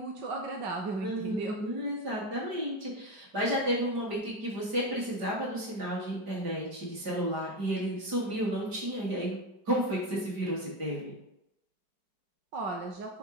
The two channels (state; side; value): late; left; 5.0 ms